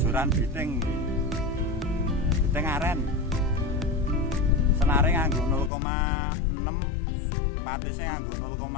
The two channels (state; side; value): drops out; right; at 5.7 s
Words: biting iki. Biting aren. Senare nganggo 0,6, patise nganggo